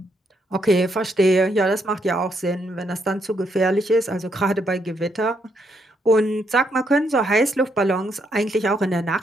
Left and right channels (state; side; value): normal; both; correlation 0.76